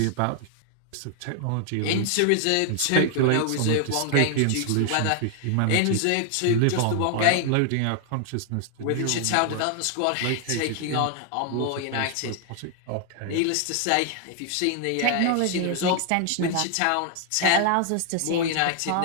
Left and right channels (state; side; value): different; both; correlation 0.00